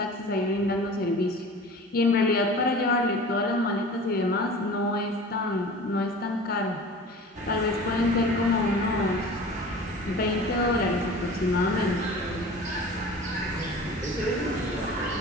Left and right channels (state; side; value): normal; both; correlation 0.39